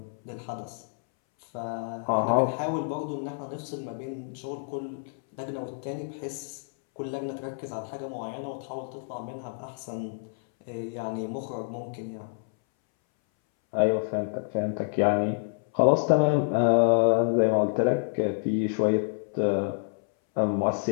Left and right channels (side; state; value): right; silent; 59 dB below the other